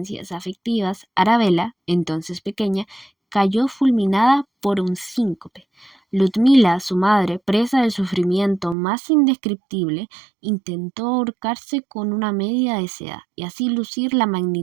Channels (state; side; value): drops out; left; at 8.8 s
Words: afectivas, Arabella, entonces pequeña, cayó fulminada por un síncope. Ludmila, su madre, presa del sufrimiento más indescriptible, intentó ahorcarse con una media de seda y así lucir la